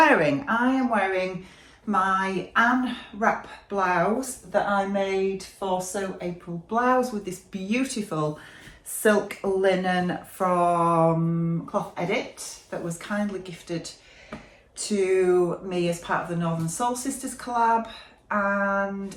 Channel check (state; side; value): identical; both; correlation 1.00